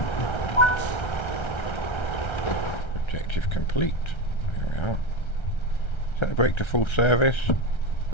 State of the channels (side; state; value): right; late; 1.3 ms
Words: Objective complete. There we are. Set the brake to full service.